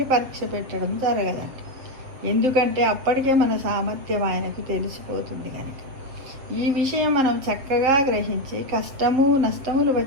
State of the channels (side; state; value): left; late; 7.7 ms